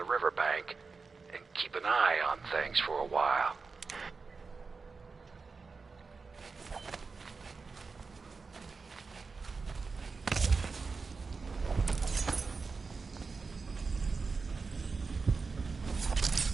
riverbank and keep an eye on things for a while.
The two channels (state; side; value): quieter; left; 4.5 dB